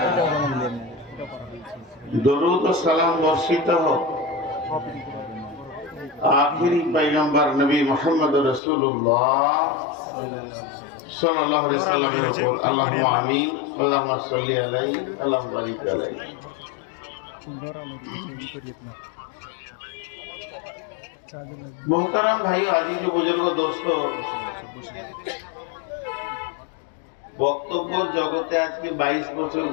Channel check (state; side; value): drops out; right; at 8.6 s